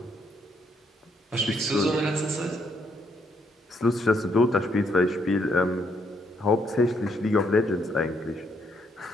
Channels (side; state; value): both; normal; correlation 0.73